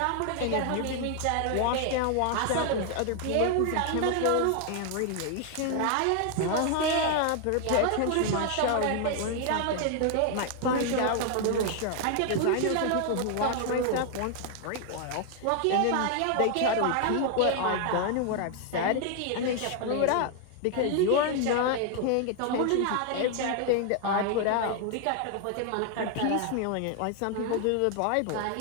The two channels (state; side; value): different; both; correlation 0.00